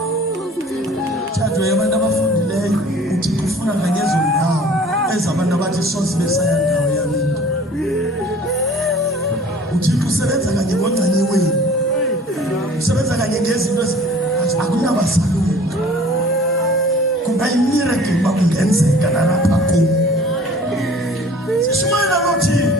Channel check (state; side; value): normal; both; correlation 0.48